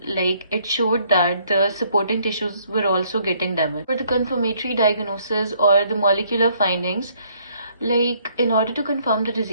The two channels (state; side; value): inverted; both; correlation -0.66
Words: like it showed that the supporting tissues were also getting damaged. For the confirmatory diagnosis or the molecular findings, like in order to confirm the